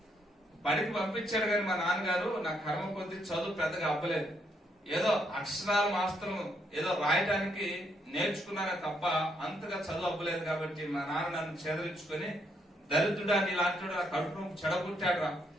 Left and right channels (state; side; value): normal; both; correlation 0.75